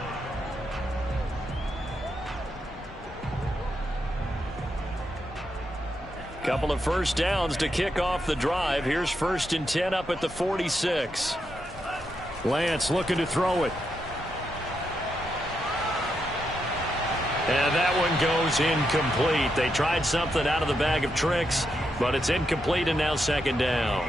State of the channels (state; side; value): normal; both; correlation 0.82